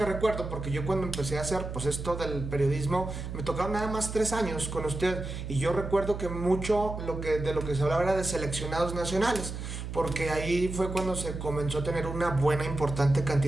recuerdo, porque yo cuando empecé a hacer pues esto del periodismo, me tocaron nada más 3 años con usted, y yo recuerdo que mucho de lo que se hablaba era de seleccionados nacionales, porque ahí fue cuando se comenzó a tener una buena, importante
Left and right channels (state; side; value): noise; right; hum, 7 dB below the sound